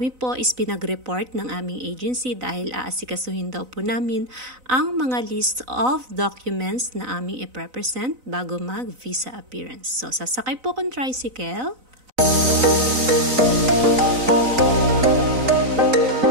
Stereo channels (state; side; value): late; left; 4.0 ms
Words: po is pinag-report ng aming agency dahil aasikasuhin daw po namin ang mga list of documents na aming i-represent bago mag-visa appearance. So sasakay po akong tricycle.